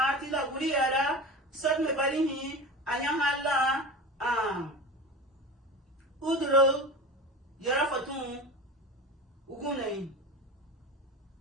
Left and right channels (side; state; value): both; normal; correlation 0.30